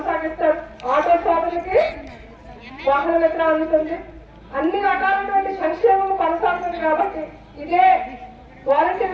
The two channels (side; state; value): both; identical; correlation 1.00